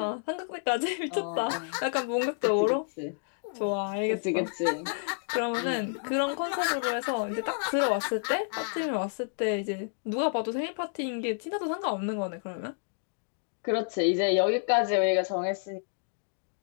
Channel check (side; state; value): right; silent; digital silence